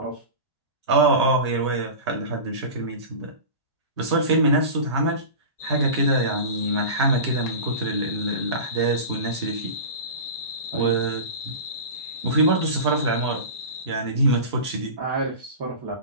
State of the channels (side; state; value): both; inverted; correlation -0.30